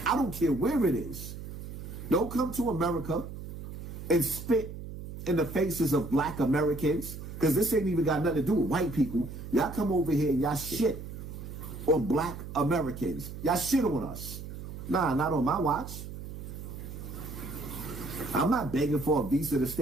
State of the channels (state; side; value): noise; right; hum, 10 dB below the sound